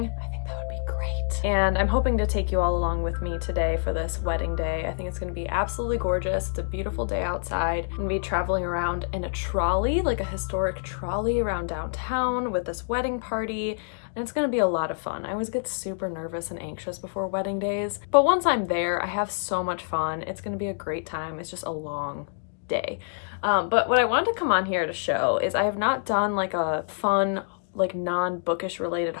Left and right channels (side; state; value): right; silent; digital silence